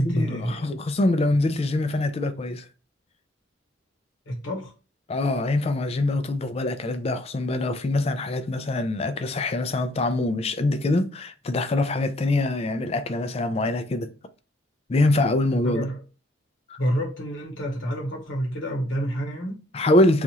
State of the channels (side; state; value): both; normal; correlation 0.65